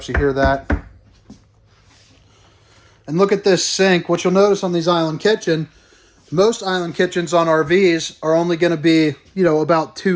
You hear that. And look at this sink. What you'll notice on these island kitchen, most island kitchens on RVs are only going to be, about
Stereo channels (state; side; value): identical; both; correlation 1.00